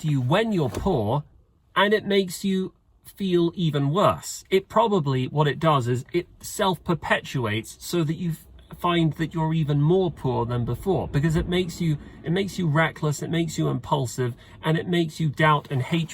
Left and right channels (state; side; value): identical; both; correlation 1.00